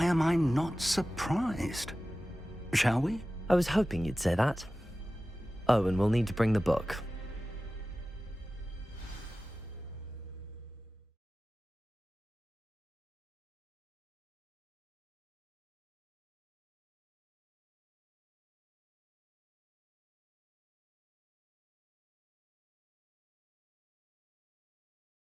am I not surprised? Shall we? I was hoping you'd say that. Oh, and we'll need to bring the book.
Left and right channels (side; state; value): both; normal; correlation 0.95